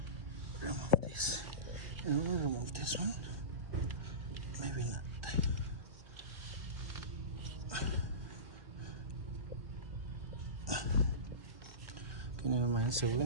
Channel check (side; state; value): left; late; 1.2 ms